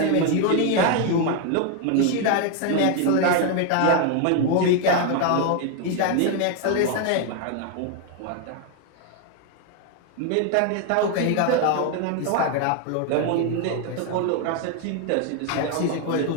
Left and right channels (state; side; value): different; both; correlation 0.01